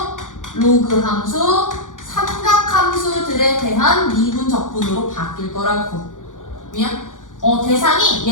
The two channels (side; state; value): right; late; 0.88 ms